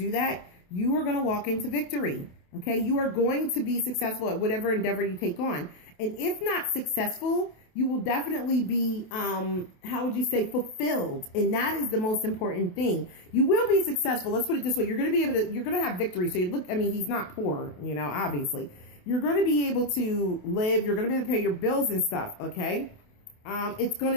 that, you are going to walk into victory, okay? You are going to be successful at whatever endeavor you take on. And if not successful, you will definitely be, how would you say, fulfilled. And that is the most important thing. You will be successful. Let's put it this way. You're going to be able to, you're going to have victory. So you look, I mean, he's not poor, you know, obviously. You're going to be able to live. You're going to be able to pay your bills and stuff, okay? It's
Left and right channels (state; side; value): late; right; 28 ms